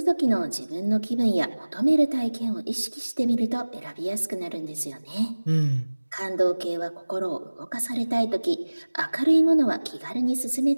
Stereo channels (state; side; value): inverted; both; correlation -1.00